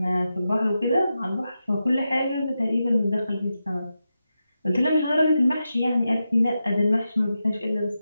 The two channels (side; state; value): both; inverted; correlation -0.89